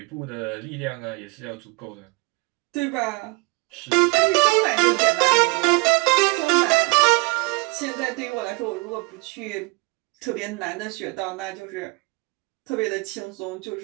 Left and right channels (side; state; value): left; quieter; 27.0 dB